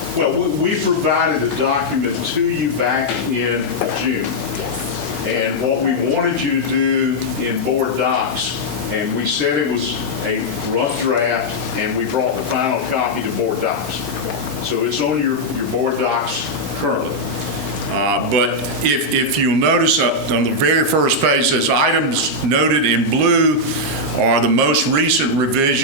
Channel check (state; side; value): normal; both; correlation -0.04